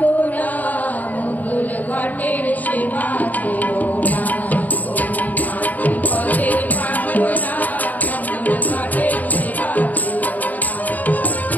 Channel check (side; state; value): right; late; 0.079 ms